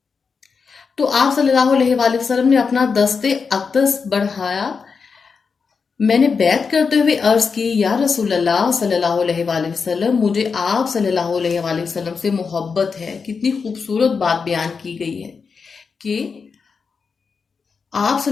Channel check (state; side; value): quieter; right; 5.3 dB